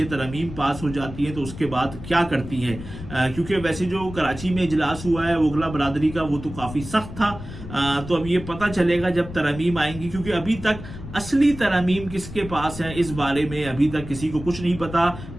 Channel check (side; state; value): left; noise; rumble, 12 dB below the sound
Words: तरमीम पास हो जाती है तो उसके बाद क्या करती है, क्योंकि वैसे जो कराची में इजलास हुआ है वकला बरादरी का वो तो काफ़ी सख्त था। तो अब ये पता चलेगा जब तरमीम आएंगी, क्योंकि अभी तक असली तरमीम किसके पास है इस बारे में अभी तक किसी को कुछ नहीं पता।